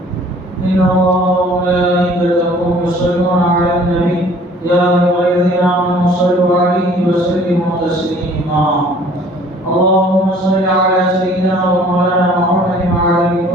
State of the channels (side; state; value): both; normal; correlation 0.53